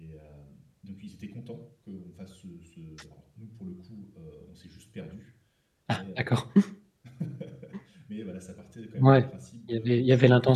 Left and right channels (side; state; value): both; identical; correlation 1.00